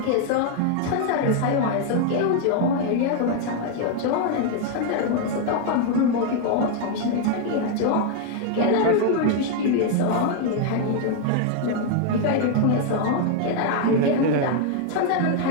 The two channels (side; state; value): both; different; correlation 0.00